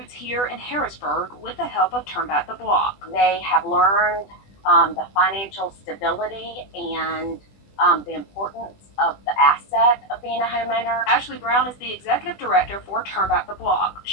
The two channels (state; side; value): late; right; 20 ms